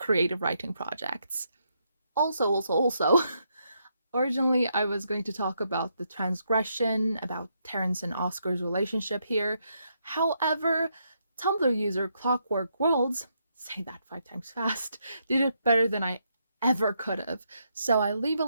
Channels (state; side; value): inverted; both; correlation -0.78